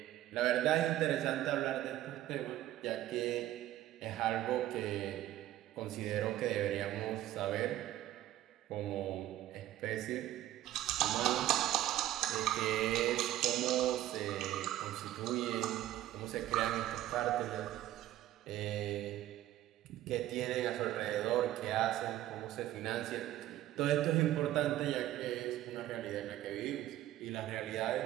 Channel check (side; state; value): left; quieter; 13.9 dB